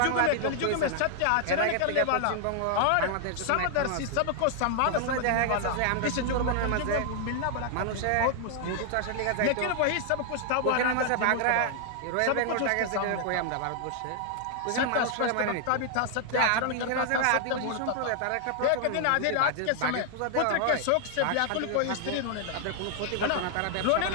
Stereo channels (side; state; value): both; different; correlation 0.00